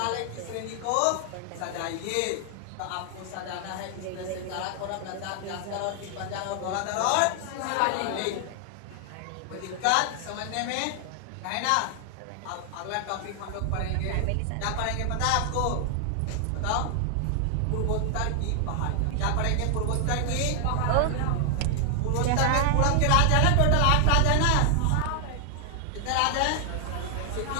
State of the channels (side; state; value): both; different; correlation 0.00